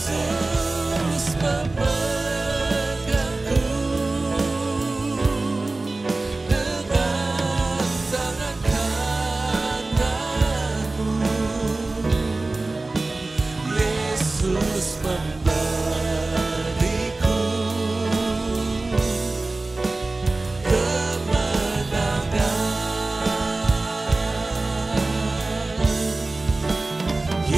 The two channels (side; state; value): left; quieter; 3.2 dB